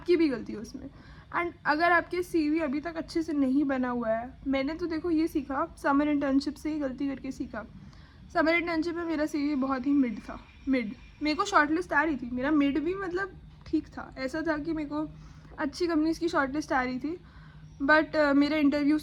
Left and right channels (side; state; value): both; identical; correlation 1.00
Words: भी गलती है उसमें। एंड अगर आपके CV अभी तक अच्छे से नहीं बना हुआ है, मैंने तो देखो ये सीखा समर इंटर्नशिप से ही गलती करके सीखा। समर इंटर्नशिप में मेरा CV बहुत ही मिड था, मिड। मेरे को शॉर्ट लिस्ट आ रही थी, मेरा मिड भी मतलब ठीक था, ऐसा था कि मेरे को अच्छी कंपनीज़ की शॉर्ट लिस्ट आ रही थी, बट मेरे इंटरव्यू